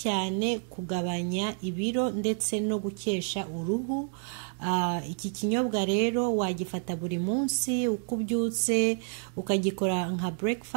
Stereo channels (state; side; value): silent; left; 58 dB below the other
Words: kugabanya ibiro ndetse no gukesha uruhu. Iki kinyobwa rero wagifata buri munsi uko ubyutse ukagikora nka